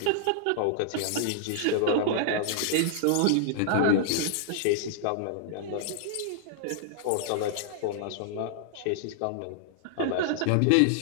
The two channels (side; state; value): both; different; correlation -0.01